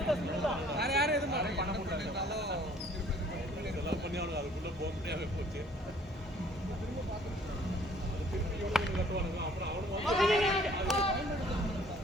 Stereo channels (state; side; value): normal; both; correlation 0.57